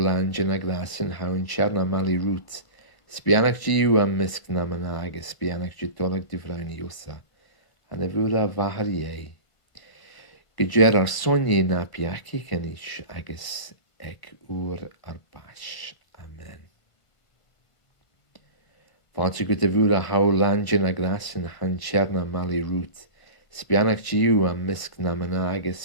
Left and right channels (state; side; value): late; right; 1.5 ms